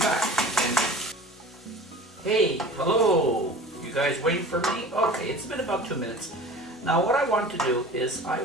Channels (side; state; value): both; normal; correlation 0.39